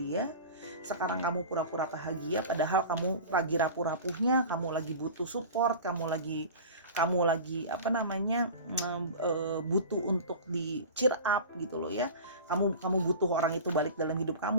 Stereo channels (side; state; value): both; inverted; correlation -0.34